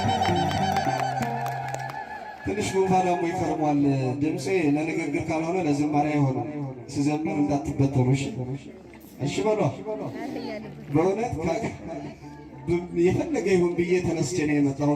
ትንሽ ጉንፋን ደግሞ ይከርሟል። ድምፄ ለንግግር ካልሆነ ለዝማሬ አይሆንም። ስዘምር እንዳትበተኑ እሺ በሏ። በእውነት የፈለገ ይሁን ብዬ ተነስቼ ነው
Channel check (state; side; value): identical; both; correlation 1.00